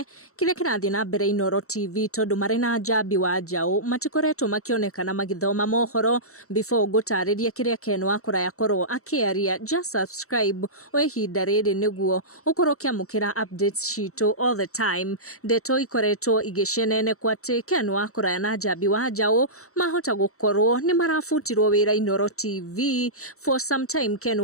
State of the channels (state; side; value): late; right; 0.64 ms